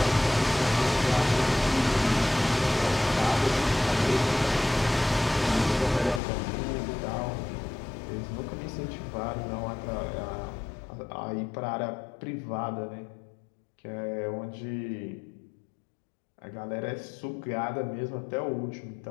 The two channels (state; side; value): drops out; right; at 6.2 s